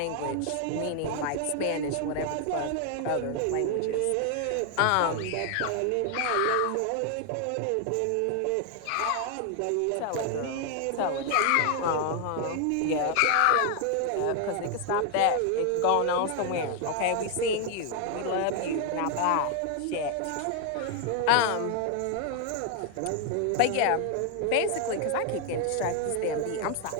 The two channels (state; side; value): different; both; correlation 0.00